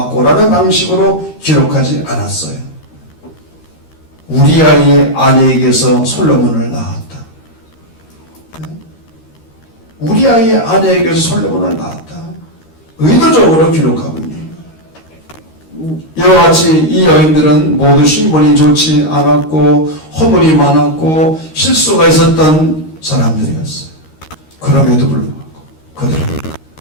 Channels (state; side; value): late; right; 13 ms